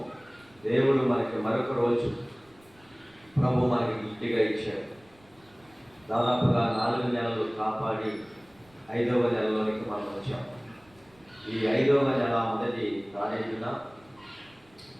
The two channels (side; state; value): right; noise; rumble, 30 dB below the sound